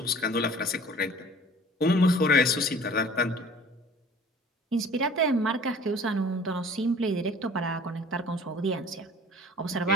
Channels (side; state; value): both; normal; correlation 0.48